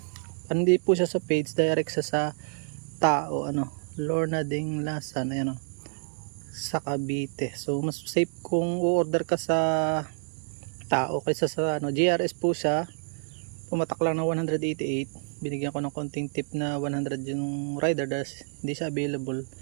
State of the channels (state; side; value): silent; left; 59 dB below the other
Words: Hindi po siya sa page, direct sa tao, Lorna Ding Lasan, ayan, sa Cavite. So mas safe kung u-order ka sa tao kaysa sa GRS po siya. Pumatak lang ng 188. Binigyan ko ng konting tip na 100 yung rider dahil hindi siya available,